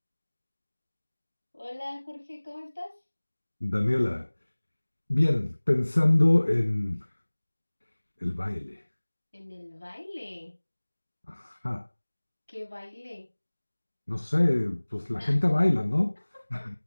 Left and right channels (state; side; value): inverted; both; correlation -1.00